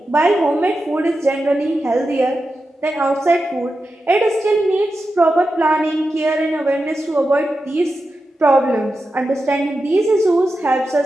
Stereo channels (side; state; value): both; normal; correlation 0.90